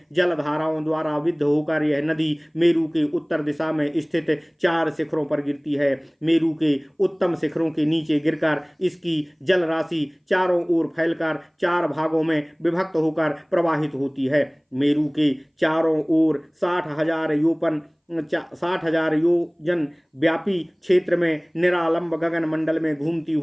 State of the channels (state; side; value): identical; both; correlation 1.00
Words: जलधाराओं द्वारा विद्ध होकर यह नदी मेरु के उत्तर दिशा में स्थित 4 शिखरों पर गिरती है। मेरु के उत्तम शिखरों के नीचे गिरकर इसकी जल राशि चारों ओर फैलकर 4 भागों में विभक्त होकर प्रवाहित होती है। मेरु के चारों ओर 60,000 योजन व्यापी क्षेत्र में निरालंब गगन मंडल में घूमती